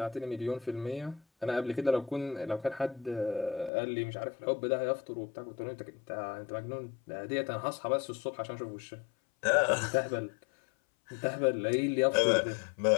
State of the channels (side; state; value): right; drops out; at 3.7 s